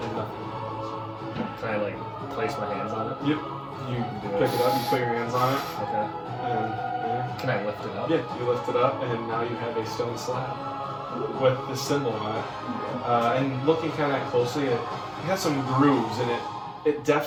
nothing. Can I like place my hands on it? Yep. You pick it up. You put your hands on it. Okay. And Can I lift it up? yeah, you lift it up, and now you have a stone slab with the symbol on it. And looking kind of closely, it has some grooves, and it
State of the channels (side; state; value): both; identical; correlation 1.00